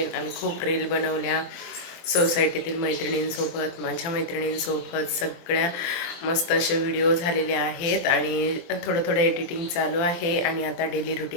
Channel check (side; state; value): right; late; 23 ms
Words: आम्ही खूप रील बनवल्या सोसायटीतील मैत्रिणींसोबत, माझ्या मैत्रिणींसोबत सगळ्या मस्त असे व्हिडिओ झालेले आहेत. आणि थोडं एडिटिंग चालू आहे. आणि आता डेली